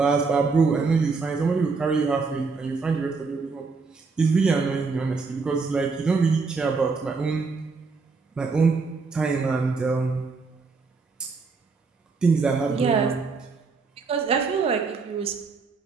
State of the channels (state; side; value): quieter; left; 4.5 dB